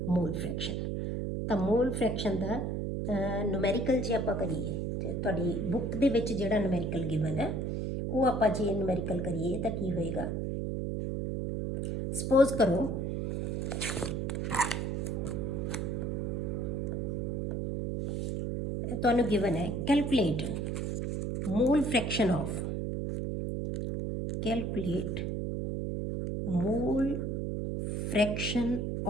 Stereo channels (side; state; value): right; noise; hum, 1 dB below the sound